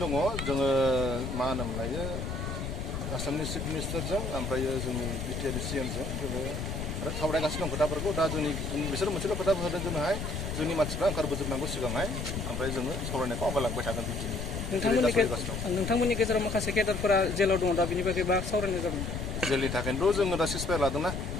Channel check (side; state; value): left; noise; rumble, 4 dB below the sound